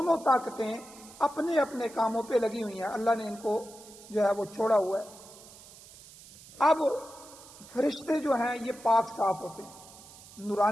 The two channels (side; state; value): right; noise; hiss, 20 dB below the sound